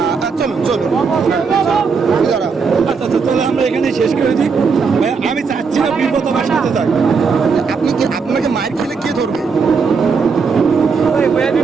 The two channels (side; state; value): left; quieter; 5.3 dB